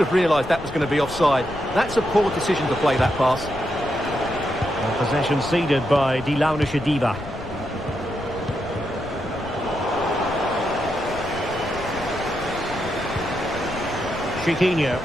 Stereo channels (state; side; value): noise; left; rumble, 13 dB below the sound